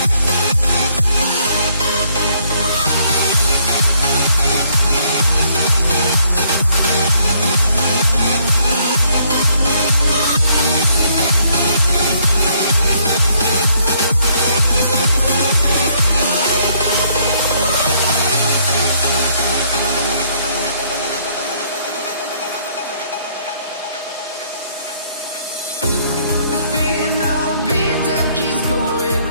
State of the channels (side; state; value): both; inverted; correlation -0.67